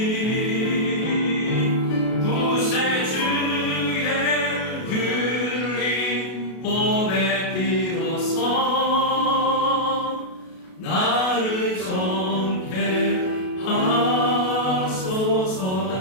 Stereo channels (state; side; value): late; right; 32 ms